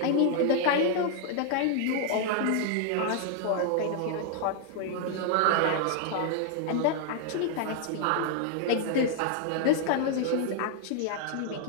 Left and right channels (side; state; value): both; different; correlation 0.00